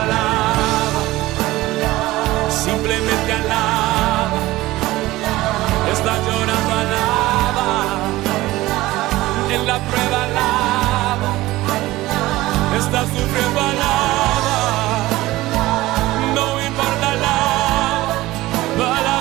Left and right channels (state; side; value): quieter; left; 17.8 dB